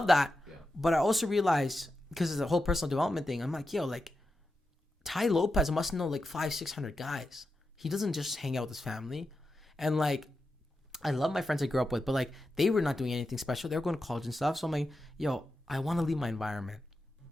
that. Yeah. But I also realized, because it's a whole personal development thing, I'm like, yo, like, Tai Lopez must know, like, 500-600 guys. He doesn't just hang out with his family. And, like, I love my friends I grew up with, but, like, they were not doing anything special. They were going to college and stuff. So I'm like, yo, I want to leave my environment.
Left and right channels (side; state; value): both; normal; correlation 0.89